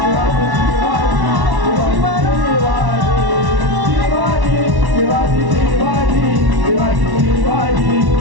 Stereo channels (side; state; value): left; late; 1.1 ms